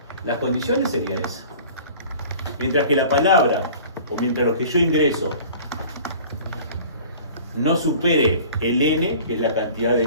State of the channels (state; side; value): inverted; both; correlation -0.45